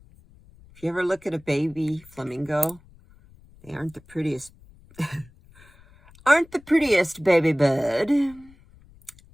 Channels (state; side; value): noise; left; rumble, 26 dB below the sound